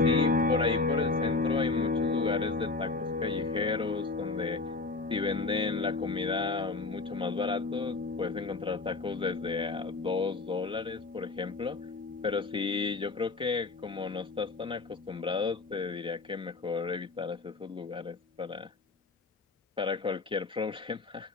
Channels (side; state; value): right; quieter; 3.8 dB